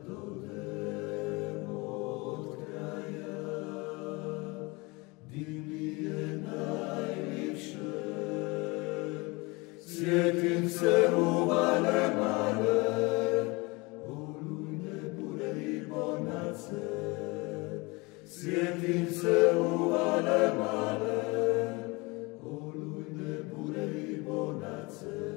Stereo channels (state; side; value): quieter; right; 25.7 dB